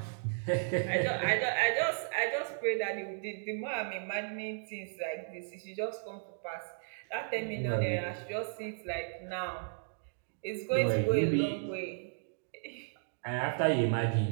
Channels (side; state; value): left; silent; digital silence